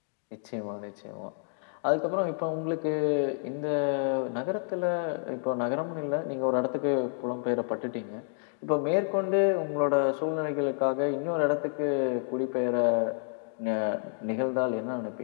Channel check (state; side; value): silent; right; digital silence